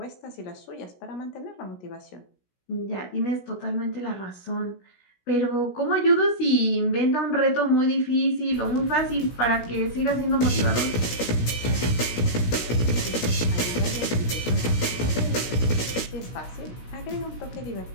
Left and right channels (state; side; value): late; right; 16 ms